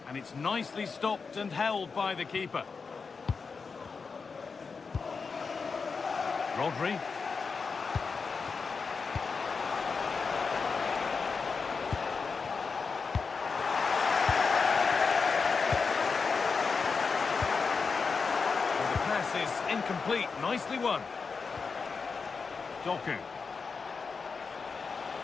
And it's nicely stopped and held by the keeper. Rodri. Is incomplete. Nicely won. Doku.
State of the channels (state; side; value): quieter; right; 5.0 dB